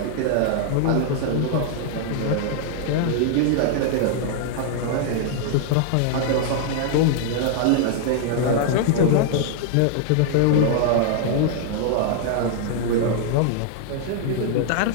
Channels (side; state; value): both; different; correlation -0.01